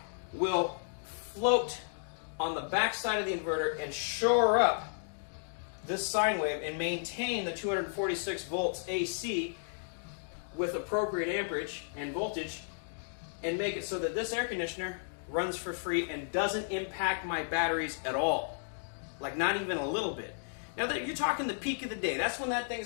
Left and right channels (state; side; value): silent; right; digital silence